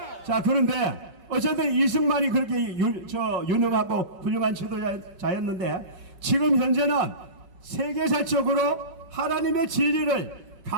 자, 그런데 어쨌든 이승만이 그렇게 유능하고 훌륭한 지도자였는데 지금 현재는 세계사적으로 하나님의 진리를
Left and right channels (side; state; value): left; late; 5.3 ms